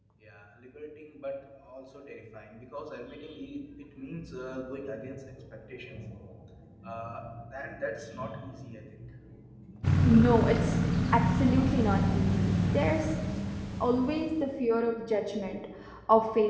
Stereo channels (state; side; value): identical; both; correlation 1.00